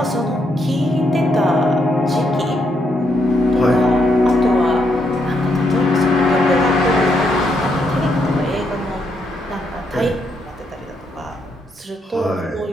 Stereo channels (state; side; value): normal; both; correlation 0.77